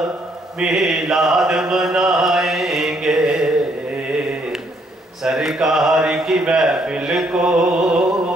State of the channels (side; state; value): both; normal; correlation 0.70